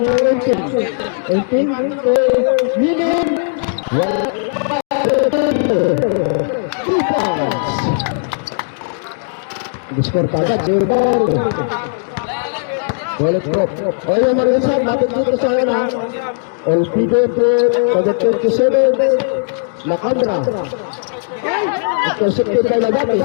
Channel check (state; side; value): silent; right; digital silence